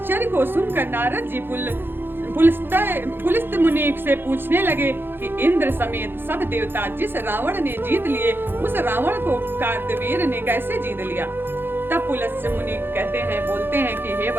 को सुनकर नारद जी पुलस्त मुनि से पूछने लगे कि इंद्र समेत सब देवता जिस रावण ने जीत लिए उस रावण को कार्तवीर ने कैसे जीत लिया। तब पुलस्त मुनि बोलते हैं कि हे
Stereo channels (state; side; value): late; left; 0.10 ms